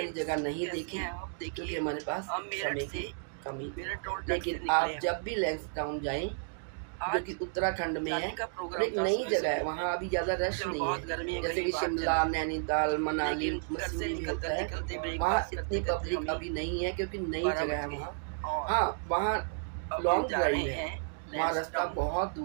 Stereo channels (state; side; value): silent; left; digital silence